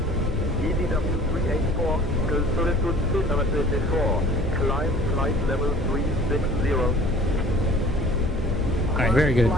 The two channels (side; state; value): both; normal; correlation 0.48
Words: EDW-384, LSZH, climb flight level 360. All right, very good.